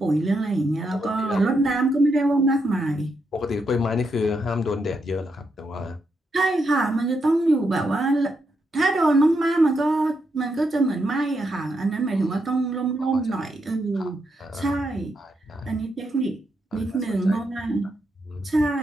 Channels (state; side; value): normal; both; correlation 0.81